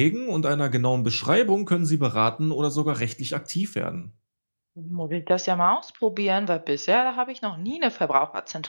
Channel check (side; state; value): both; inverted; correlation -1.00